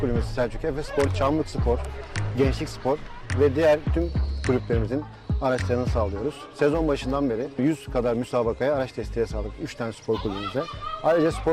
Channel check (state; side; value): identical; both; correlation 1.00